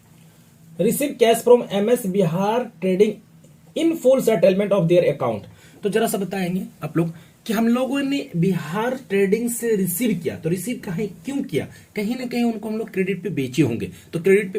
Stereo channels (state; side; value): identical; both; correlation 1.00